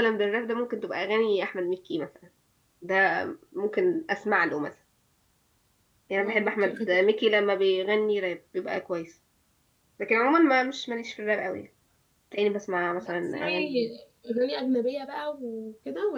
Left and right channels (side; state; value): both; identical; correlation 1.00